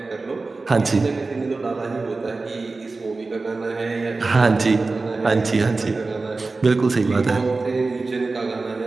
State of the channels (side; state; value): left; quieter; 3.7 dB